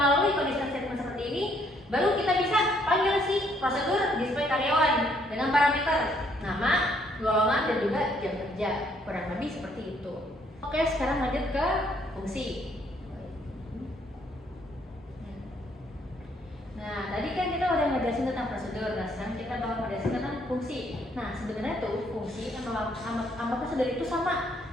conditional statement seperti ini, baru kita bisa panggil si prosedur display karyawan dengan parameter nama, golongan, dan juga jam kerja. Kurang lebih seperti itu. Oke, sekarang lanjut ke fungsi. Nah, tadi kan kita udah ngejelasin tentang prosedur. Nah, sekarang kita bakal ngejelasin tentang fungsi. Nah, sebenarnya tuh fungsi sama prosedur itu sama.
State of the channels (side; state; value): both; normal; correlation 0.68